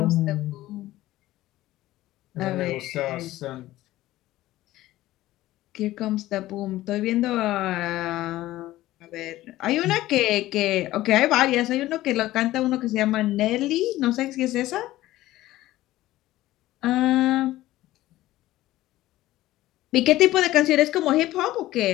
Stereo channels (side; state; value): right; quieter; 16.0 dB